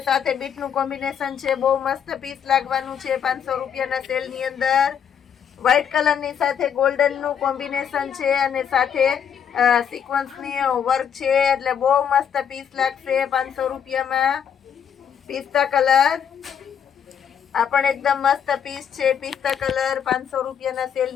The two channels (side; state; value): right; quieter; 8.2 dB